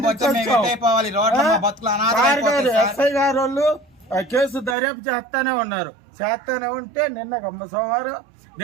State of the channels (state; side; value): drops out; left; at 4.8 s